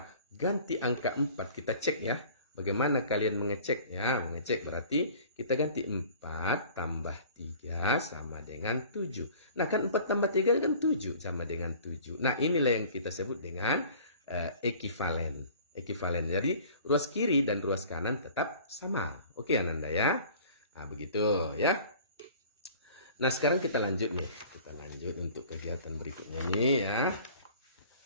ganti angka 4, kita cek ya. Bagaimana kalian mengecek? Ya, mengecek berarti kita ganti 4 tambah 3 sama dengan 7. Nah, kan 4 tambah 3 kan 7 sama dengan 7. Nah, inilah yang kita sebut dengan ekivalen. Ekivalen. Jadi, ruas kiri dan ruas kanan tetap sama. Oke, Ananda ya. Nah, begitu ya. Nah, sekarang kita lanjut nih. Kita lanjut untuk kegiatan berikutnya nih ya.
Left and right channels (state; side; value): inverted; both; correlation -0.47